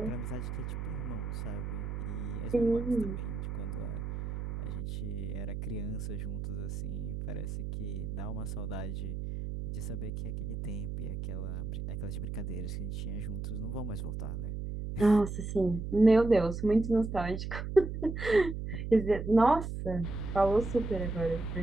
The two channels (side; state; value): right; noise; hum, 4 dB below the sound